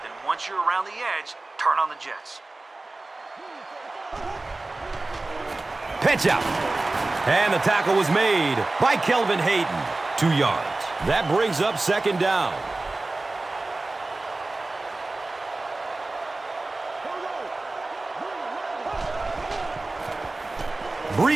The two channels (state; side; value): quieter; left; 3.1 dB